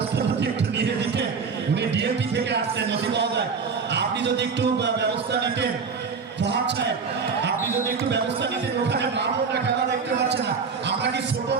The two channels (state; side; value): quieter; left; 5.4 dB